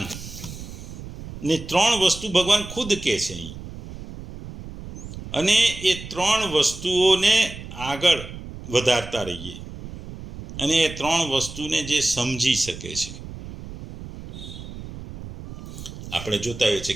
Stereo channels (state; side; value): noise; right; rumble, 12 dB below the sound